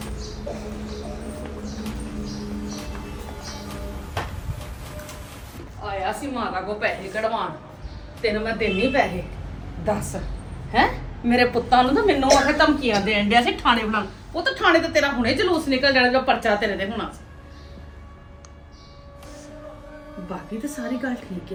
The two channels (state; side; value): identical; both; correlation 1.00